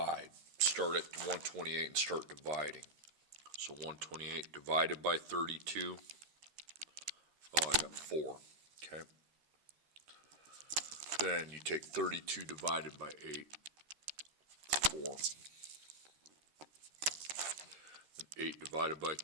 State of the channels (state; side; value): late; left; 13 ms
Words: Start at 128 and start dividing. So 128 divided by 32, oh, I got 4, okay? Then you take 32 divided by 8, 4. And 8 divided by